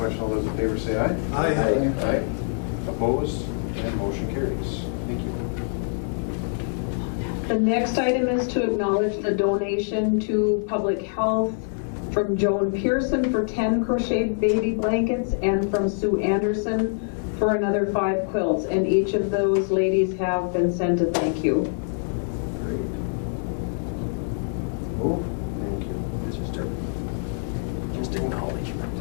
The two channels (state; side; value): silent; right; 62 dB below the other